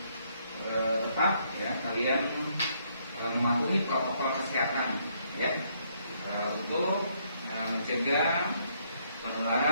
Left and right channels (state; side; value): inverted; both; correlation -0.71